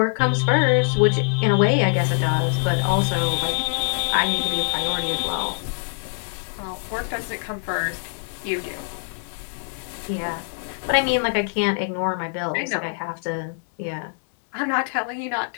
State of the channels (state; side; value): silent; right; 63 dB below the other